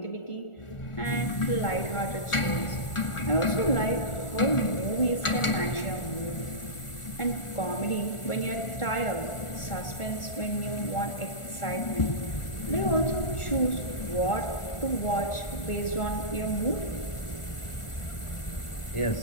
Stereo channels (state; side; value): late; right; 1.4 ms